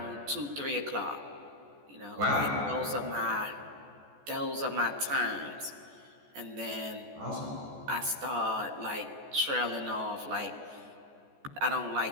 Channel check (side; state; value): left; late; 14 ms